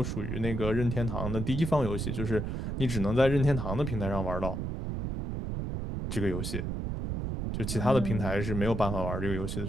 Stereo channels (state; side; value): noise; right; rumble, 3 dB below the sound